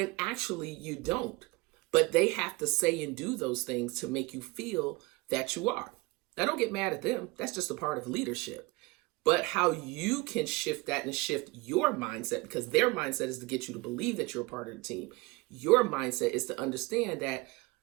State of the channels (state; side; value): quieter; left; 24.1 dB